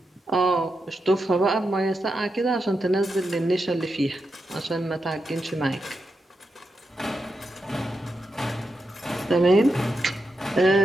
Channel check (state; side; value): normal; both; correlation 0.87